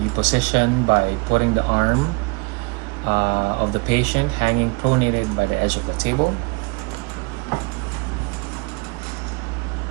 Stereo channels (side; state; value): left; quieter; 30.0 dB